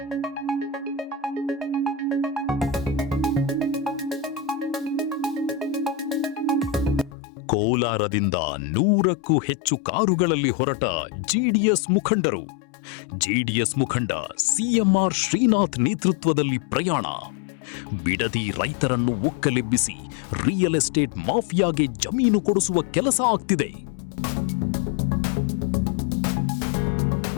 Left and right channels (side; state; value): right; drops out; at 7.2 s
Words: ಕೋಲಾರದಿಂದ 100ಕ್ಕೂ ಹೆಚ್ಚು ಕಾರುಗಳಲ್ಲಿ ಹೊರಟ ಜೆಡಿಎಸ್ ಮುಖಂಡರು. ಜೆಡಿಎಸ್ ಮುಖಂಡ ಸಿಎಂಆರ್ ಶ್ರೀನಾಥ್ ನೇತೃತ್ವದಲ್ಲಿ ಪ್ರಯಾಣ. ಬಿಡದಿ ರೈತರನ್ನು ಒಕ್ಕಲೆಬ್ಬಿಸಿ ರಿಯಲ್ ಎಸ್ಟೇಟ್ ಮಾಫಿಯಾಗೆ ಜಮೀನು ಕೊಡಿಸುವ ಕೆಲಸ ಆಗ್ತಿದೆ.